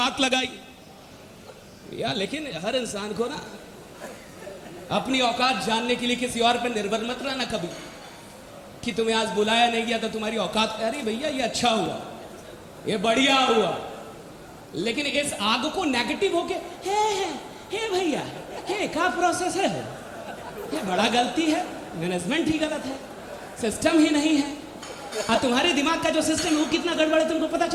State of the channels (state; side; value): identical; both; correlation 1.00